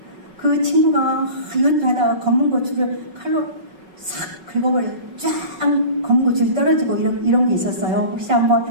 그 친구가 이것도 하다가 검은 고추를 칼로 싹 긁어버려 쫙 검은 고추를 떨어지고 이런 게 있었어요. 혹시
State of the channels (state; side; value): late; left; 5.4 ms